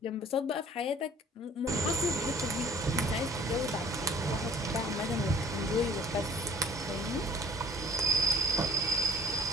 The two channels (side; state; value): both; normal; correlation 0.51